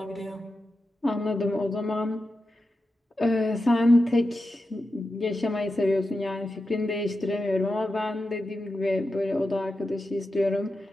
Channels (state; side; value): normal; both; correlation 0.90